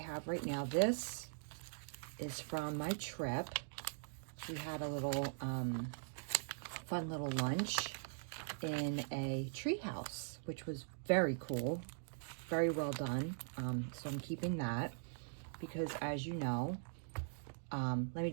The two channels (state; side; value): silent; left; digital silence